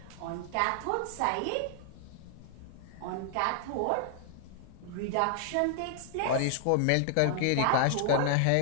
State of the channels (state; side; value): different; both; correlation 0.00